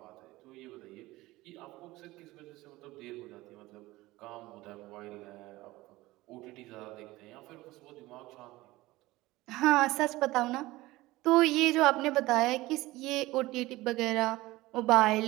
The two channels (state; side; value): quieter; left; 18.9 dB